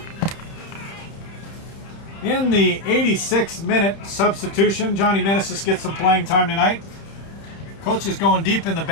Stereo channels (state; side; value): late; right; 31 ms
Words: In the 86th-minute substitution, Johnny Meneses gets some playing time tonight. Coach is going deep in the